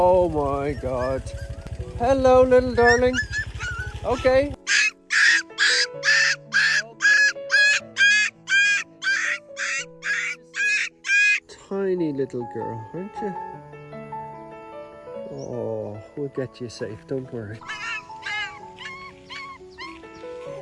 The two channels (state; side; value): identical; both; correlation 1.00